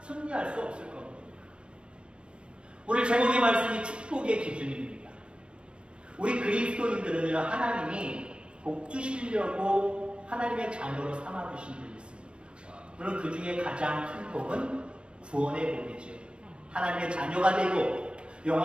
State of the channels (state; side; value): late; left; 0.057 ms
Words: 승리할 수 없을 겁니다. 오늘 제목의 말씀이 축복의 기준입니다. 우리 그리스도인들은 하나님이 복 주시려고 하나님의 자녀로 삼아주신 분이 있습니다. 물론 그 중에 가장 큰 복은 구원의 복이죠. 하나님의 자녀가 되고